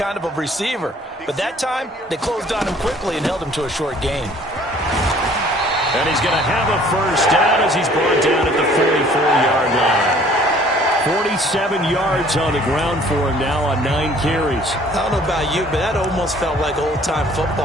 of a receiver. But that time, they closed on him quickly and held him to a short gain. And he's going to have a 1st down as he's brought down at the 44-yard line. 47 yards on the ground for him now on 9 carries. I don't know about you, but that almost felt like old-time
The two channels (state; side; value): normal; both; correlation 0.55